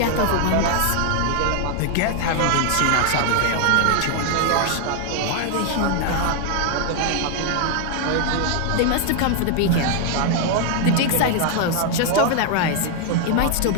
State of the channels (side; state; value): both; different; correlation 0.00